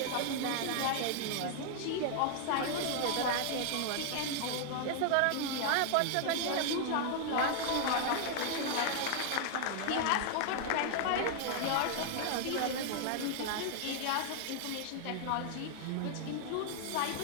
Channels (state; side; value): different; both; correlation 0.00